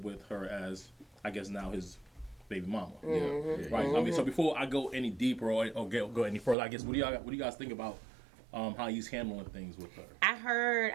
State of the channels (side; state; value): left; drops out; at 6.6 s